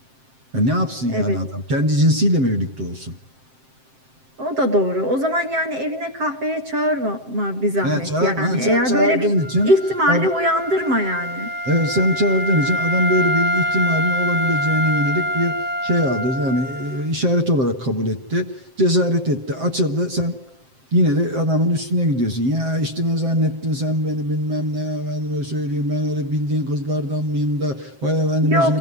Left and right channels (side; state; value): left; late; 7.6 ms